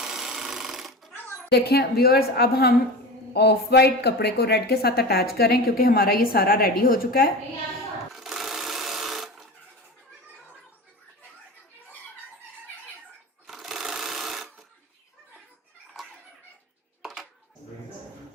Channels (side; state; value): both; normal; correlation 0.29